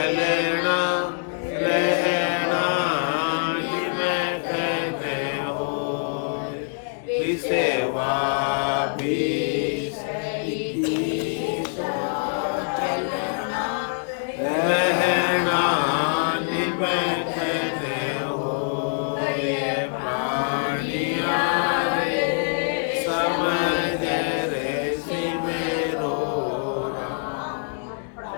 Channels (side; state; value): right; silent; digital silence